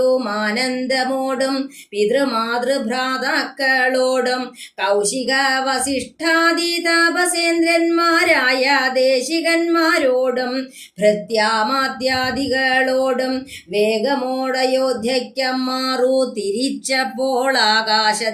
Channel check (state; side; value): identical; both; correlation 1.00